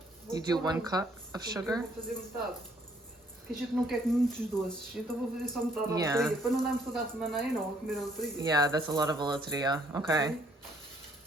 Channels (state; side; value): normal; both; correlation 0.64